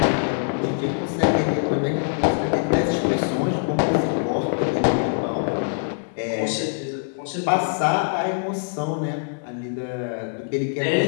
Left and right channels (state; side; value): silent; right; digital silence